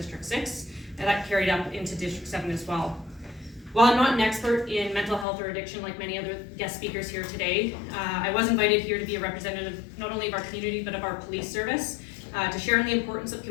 6, and that carried up into District 7 as well. While I'm not an expert in mental health or addiction like many other guest speakers here today, I was invited here to be a representative not only of our community but of our police service to share in the importance of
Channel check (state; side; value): drops out; right; at 5.2 s